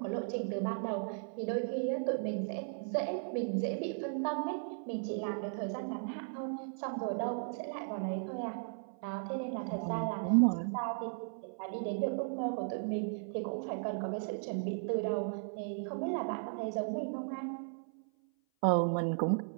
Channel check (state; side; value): silent; left; 54 dB below the other